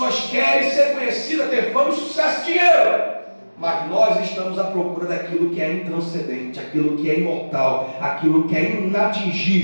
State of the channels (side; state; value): both; inverted; correlation -1.00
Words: querem ser conhecidas, ter fama, sucesso e dinheiro. Mas nós estamos à procura daquilo que é intranscendente, aquilo que é imortal, aquilo que é